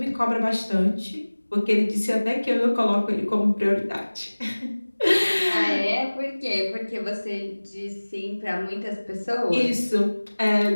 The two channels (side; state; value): both; inverted; correlation -1.00